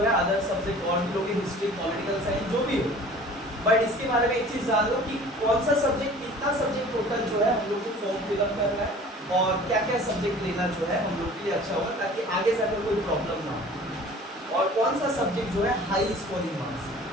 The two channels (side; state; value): both; normal; correlation 0.46